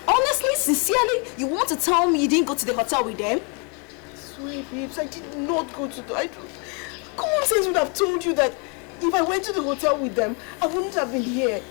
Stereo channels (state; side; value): quieter; right; 34.8 dB